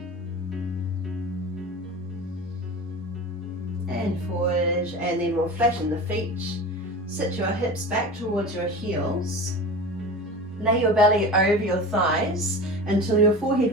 And forward. And then we'll flatten the feet. Sit your hips back towards your heels. Lay your belly over your thighs until your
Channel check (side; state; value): both; normal; correlation 0.32